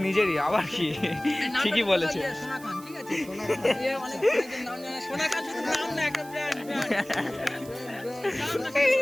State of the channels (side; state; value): right; noise; hiss, 20 dB below the sound